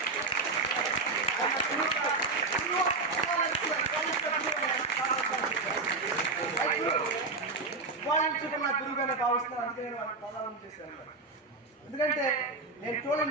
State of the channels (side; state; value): left; quieter; 3.7 dB